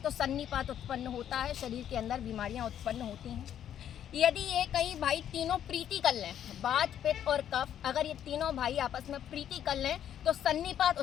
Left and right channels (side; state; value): right; quieter; 10.1 dB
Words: तो सन्निपात उत्पन्न होता है, शरीर के अंदर बीमारियां उत्पन्न होती हैं। यदि ये कई भाई तीनों प्रीति कर लें, वात, पित्त और कफ, अगर ये तीनों भाई आपस में प्रीति कर लें तो सन्निपात